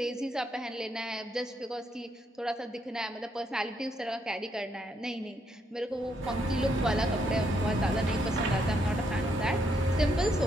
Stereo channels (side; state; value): both; normal; correlation 0.76